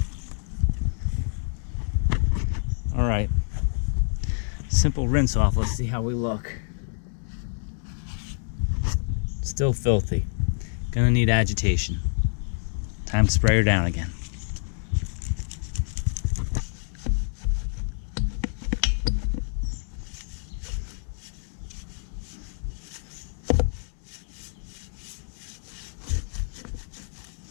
All right. Simple rinse off. Let's see how we look. Still filthy. Gonna need agitation. Time to spray her down again.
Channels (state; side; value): silent; right; digital silence